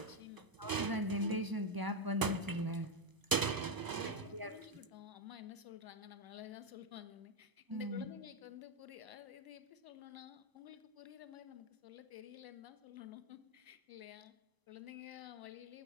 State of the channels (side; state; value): left; late; 1.0 ms